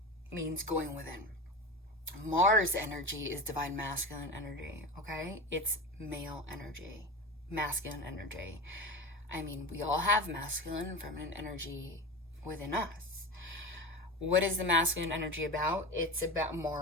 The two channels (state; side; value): normal; both; correlation 0.26